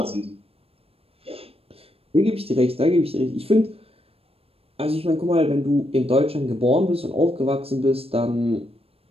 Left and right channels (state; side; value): late; left; 0.28 ms